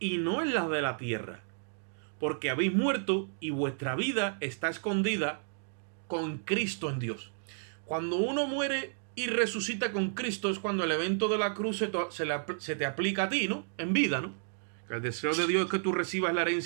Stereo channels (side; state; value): left; silent; digital silence